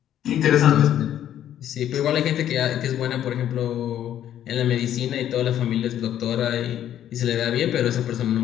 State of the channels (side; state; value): right; quieter; 11.0 dB